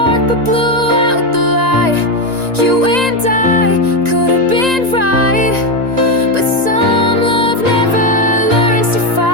but blew out the light. You and I could have been right, but some love never learns to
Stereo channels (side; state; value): left; late; 1.9 ms